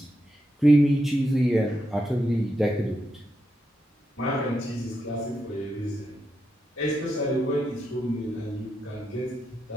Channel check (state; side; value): normal; both; correlation 0.84